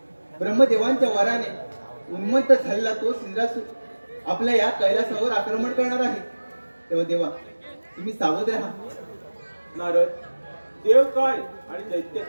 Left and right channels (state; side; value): inverted; both; correlation -1.00